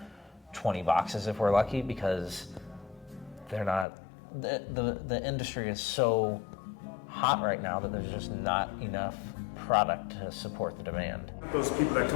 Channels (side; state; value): right; drops out; at 3.9 s